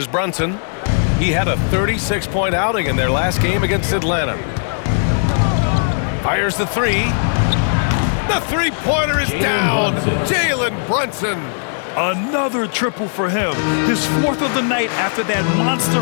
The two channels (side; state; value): right; silent; digital silence